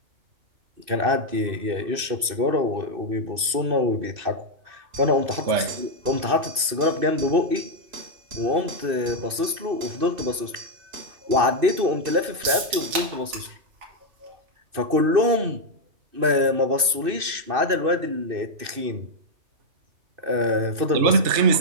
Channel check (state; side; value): late; left; 2.6 ms